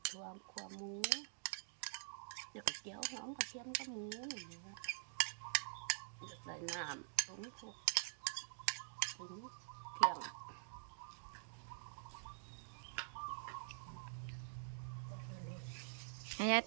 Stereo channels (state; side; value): silent; left; digital silence